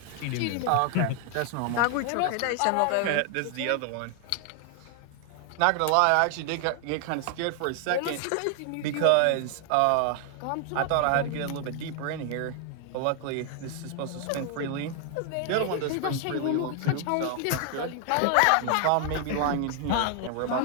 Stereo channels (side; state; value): both; different; correlation 0.00